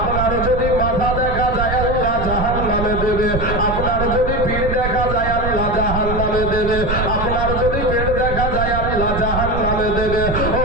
যদি মাথা দেখা যায় আল্লাহ জাহান্নামে দেবে, আপনার যদি পিঠ দেখা যায় আল্লাহ জাহান্নামে দেবে, আপনার যদি পেট দেখা যায় আল্লাহ জাহান্নামে দেবে। ও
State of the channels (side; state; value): right; noise; rumble, 4 dB below the sound